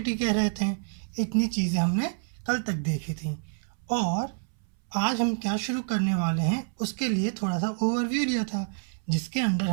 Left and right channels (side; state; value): left; silent; 59 dB below the other